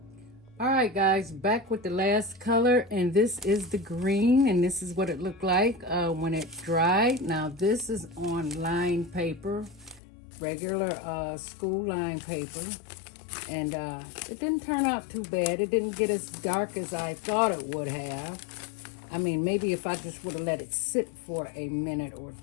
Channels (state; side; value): drops out; right; at 10.0 s